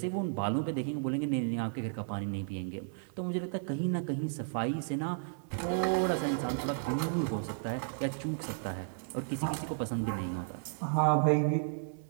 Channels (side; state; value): left; silent; 55 dB below the other